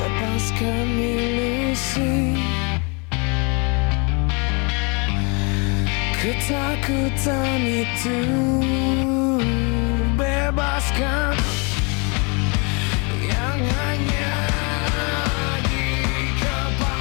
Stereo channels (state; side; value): quieter; right; 32.4 dB